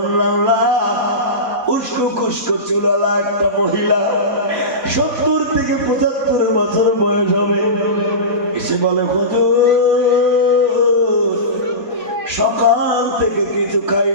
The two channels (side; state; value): left; late; 4.0 ms